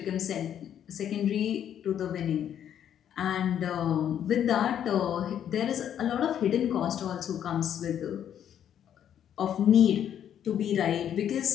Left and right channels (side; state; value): right; quieter; 9.7 dB